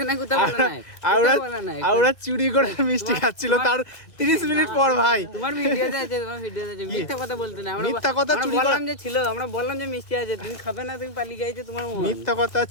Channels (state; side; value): late; right; 1.9 ms